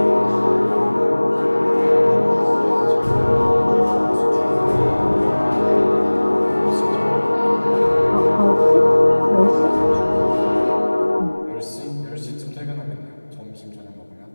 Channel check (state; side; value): inverted; both; correlation -1.00